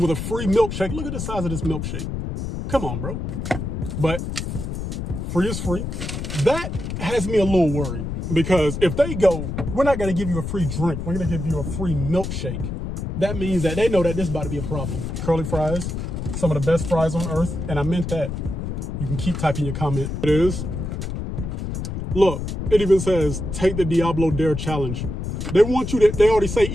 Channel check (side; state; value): left; noise; rumble, 4 dB below the sound